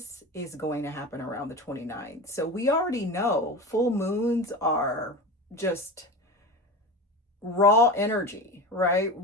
is going to happen around the 29th. So we already know full moons are just raw energy, right?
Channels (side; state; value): both; normal; correlation 0.27